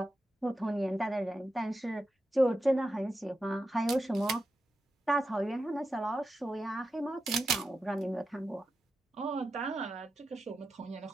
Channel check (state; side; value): normal; both; correlation 0.89